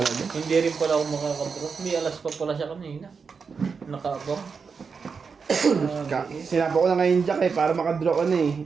Hindi rin pala ako makakadraw. May alas pa pala siya kanina. Nakaabang. Sinapa ko na ngayon Jack eh, para makadraw ka na eh.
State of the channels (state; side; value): quieter; left; 5.5 dB